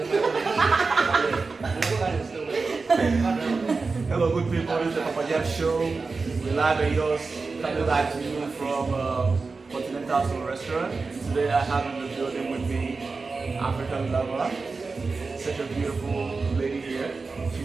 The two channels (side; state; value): left; quieter; 4.2 dB